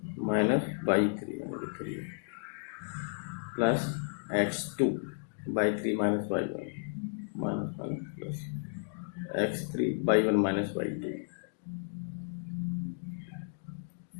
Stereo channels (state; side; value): silent; right; digital silence